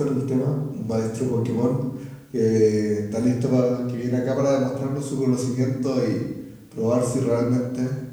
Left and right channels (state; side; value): identical; both; correlation 1.00